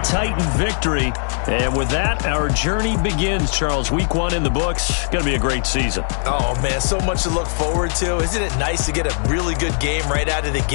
Titan victory. And with that, our journey begins, Charles. Week 1 in the books. Going to be a great season. Oh, man, so much to look forward to. Isn't it nice to get a really good game right out of the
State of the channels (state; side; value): silent; right; digital silence